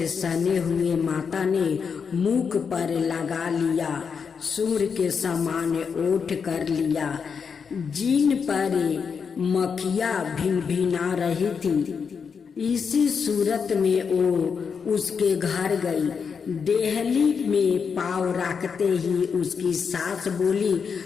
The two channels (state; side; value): quieter; right; 6.1 dB